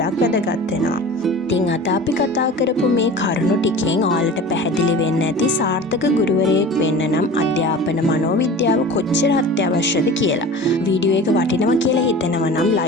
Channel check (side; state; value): both; normal; correlation 0.38